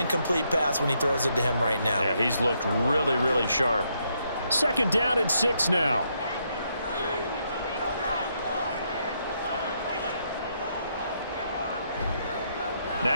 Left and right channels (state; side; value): inverted; both; correlation -0.76